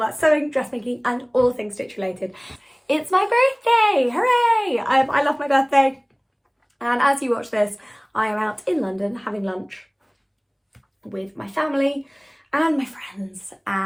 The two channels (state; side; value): identical; both; correlation 1.00